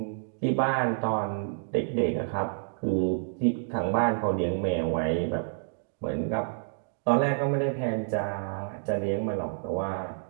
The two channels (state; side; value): silent; left; digital silence